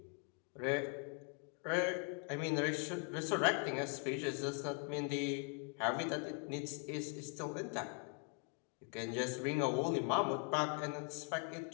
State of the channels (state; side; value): quieter; right; 35.1 dB